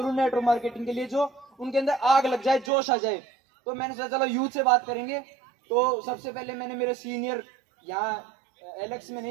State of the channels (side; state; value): left; drops out; at 2.7 s